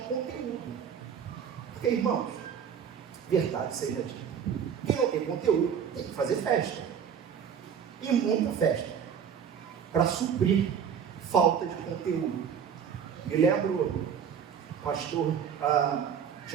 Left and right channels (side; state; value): left; quieter; 7.8 dB